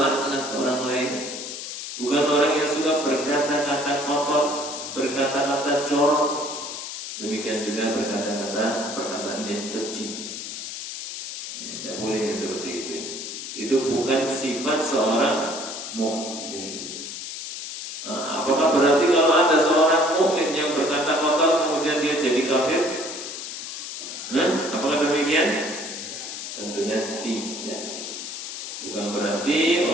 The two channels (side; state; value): left; noise; hiss, 8 dB below the sound